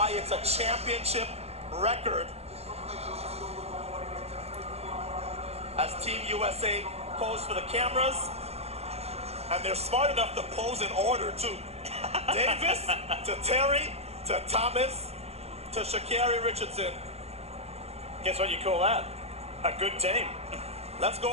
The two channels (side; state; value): left; late; 0.30 ms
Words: it's a championship record. As Team USA pose for the cameras, and they're smart enough to pose in order too. Davis to Terry to Thomas to Sha'Carri Richardson. Guess what you call that? A good team. Let's